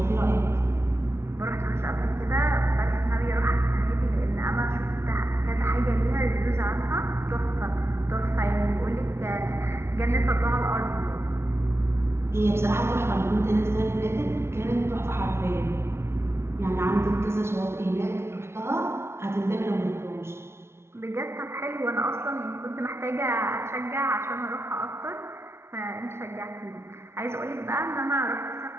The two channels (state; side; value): late; left; 0.12 ms